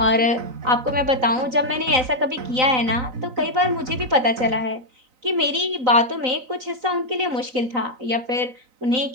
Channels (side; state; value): left; late; 3.9 ms